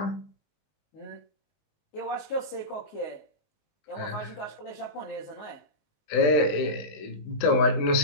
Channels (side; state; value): right; late; 19 ms